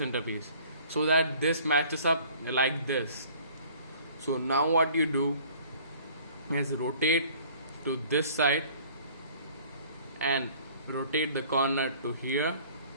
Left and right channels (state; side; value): inverted; both; correlation -0.52